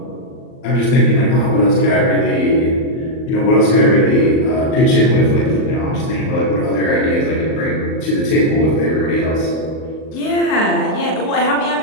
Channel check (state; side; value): late; right; 38 ms